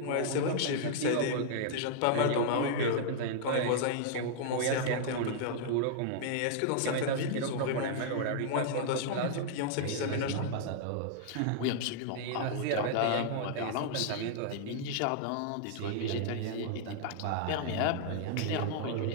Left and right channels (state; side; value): different; both; correlation -0.01